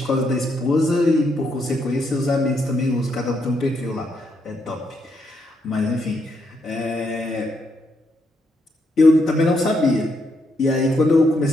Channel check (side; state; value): both; normal; correlation 0.78